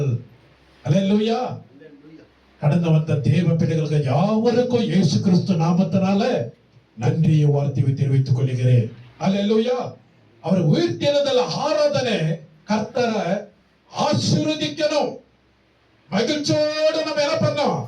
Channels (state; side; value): identical; both; correlation 1.00